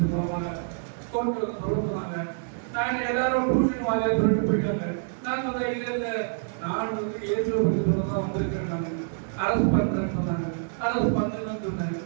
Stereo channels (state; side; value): silent; left; digital silence